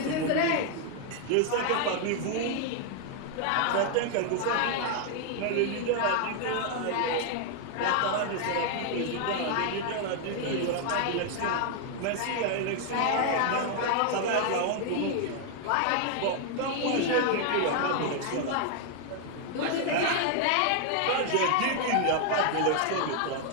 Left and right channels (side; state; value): both; different; correlation 0.00